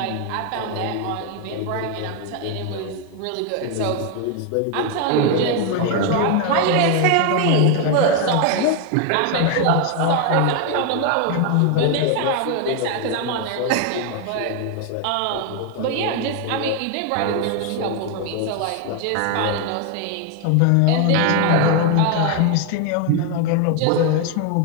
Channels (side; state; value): both; different; correlation 0.01